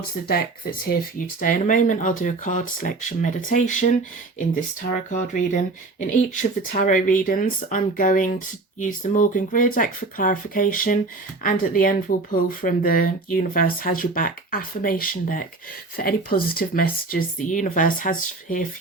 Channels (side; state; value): left; quieter; 3.5 dB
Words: the deck that's here for you today. In a moment, I'll do a card selection meditation in this tarot card reading. In each of the tarot readings, I'm going to use the Morgan Greer deck for clarification, and at the end, we'll pull from the Universe Has Your Back affirmation deck for any positive messages the universe has here